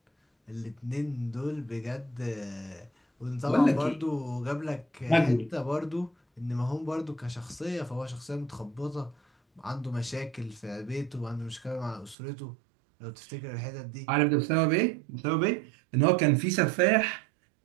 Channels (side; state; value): left; drops out; at 12.2 s